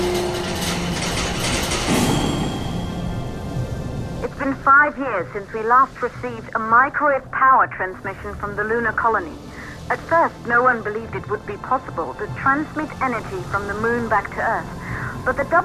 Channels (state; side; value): identical; both; correlation 1.00